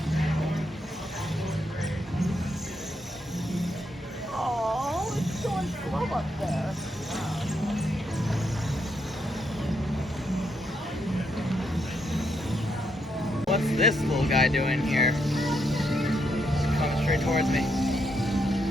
Oh, it's going slow up there. What's this little guy doing here? He's coming straight towards me.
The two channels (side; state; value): both; normal; correlation 0.78